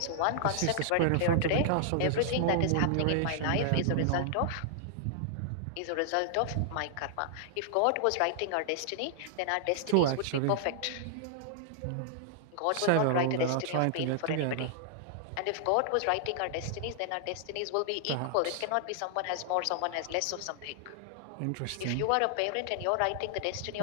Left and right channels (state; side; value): different; both; correlation -0.01